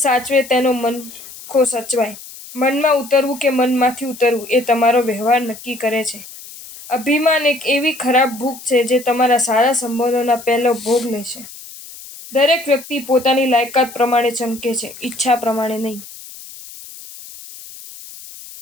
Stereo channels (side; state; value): left; noise; hiss, 16 dB below the sound